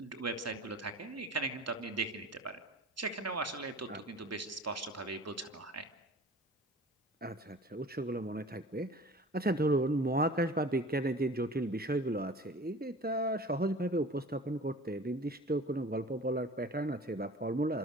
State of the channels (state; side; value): normal; both; correlation 0.42